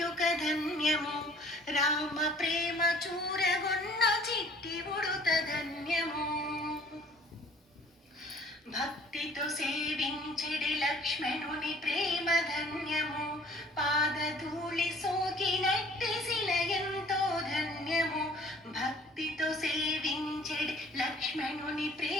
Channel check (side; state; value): both; normal; correlation 0.54